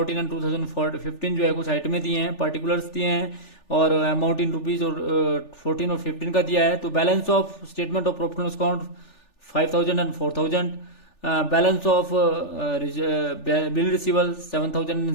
एंड 2015 जो है कुछ आइटमें दिए हैं, पर्टिकुलर्स दिए हैं और अमाउंट इन रुपीज और 14 और 15 का दिया है। तो balance of statement of profit and loss account 5,000 and 4,000। Balance of bill रिसीवल 7,000 and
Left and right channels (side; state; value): right; late; 3.4 ms